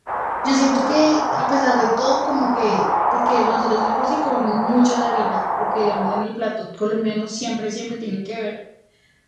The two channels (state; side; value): identical; both; correlation 1.00